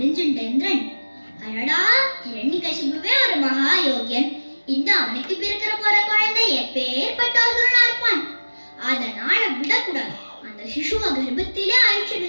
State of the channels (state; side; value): inverted; both; correlation -1.00